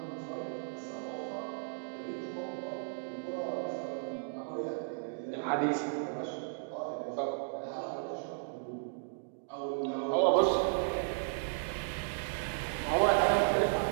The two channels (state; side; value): silent; left; digital silence